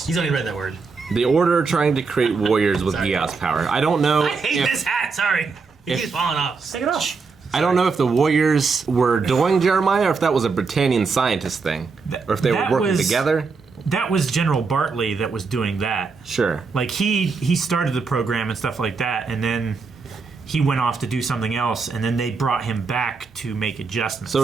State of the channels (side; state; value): left; quieter; 4.7 dB